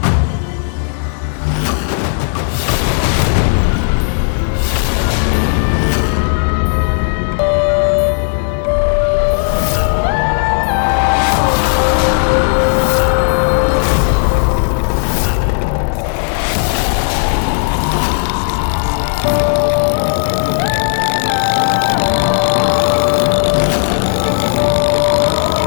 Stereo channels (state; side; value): silent; right; digital silence